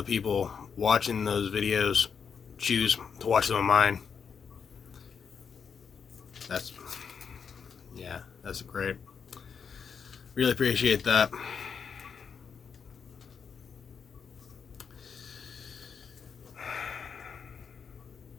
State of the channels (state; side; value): quieter; right; 6.5 dB